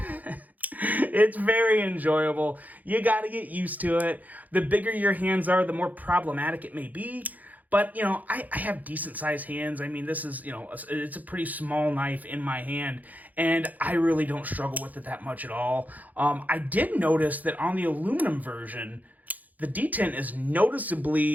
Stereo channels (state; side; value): late; left; 0.080 ms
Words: it's very enjoyable. You got to get used to it. The bigger your hands are, the more problematic it may be. But, you know, I have decent sized hands. I mean, this is, you know, it's a pretty small knife in my hand, and I really don't struggle with it that much at all. I did notice that on the aluminum version, the detent is